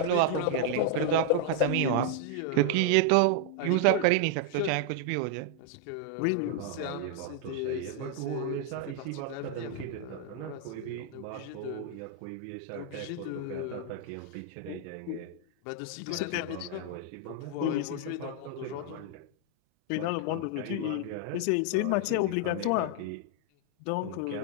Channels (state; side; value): different; both; correlation 0.00